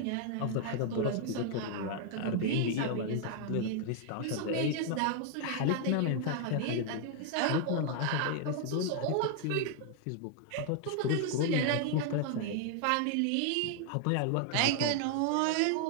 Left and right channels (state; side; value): different; both; correlation 0.00